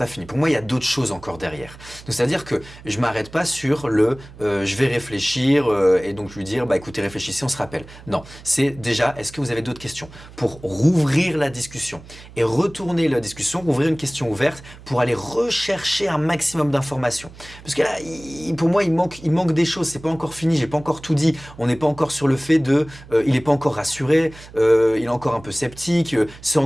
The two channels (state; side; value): noise; right; hum, 19 dB below the sound